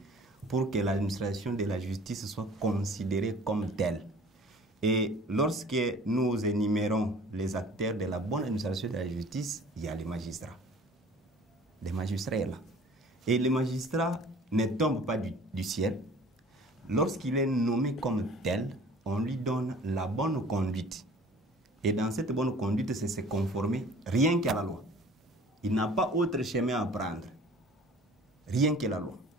pour que l'administration de la justice soit considérée comme telle. Et lorsque nous énumérons les acteurs de la bonne administration de la justice, il y a les magistrats. Les magistrats là. Et les magistrats ne tombent pas du ciel. Lorsqu'il est nommé comme tel, on lui donne la bonne conduite. Et dans cette bonne conduite, c'est se conformer rien qu'à la loi. Il n'a pas autre chemin à prendre. Rien que la loi.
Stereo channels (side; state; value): both; normal; correlation 0.48